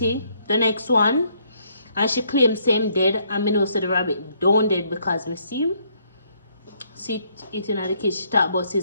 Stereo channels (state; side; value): inverted; both; correlation -0.69